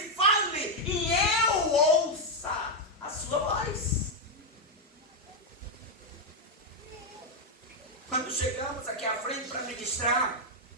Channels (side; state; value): both; normal; correlation 0.02